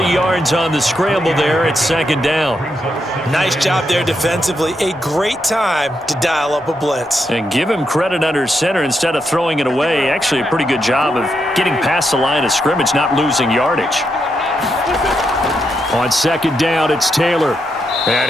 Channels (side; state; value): both; normal; correlation 0.82